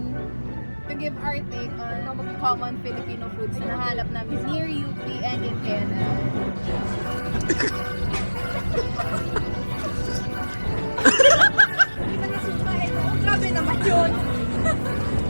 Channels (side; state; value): both; inverted; correlation -1.00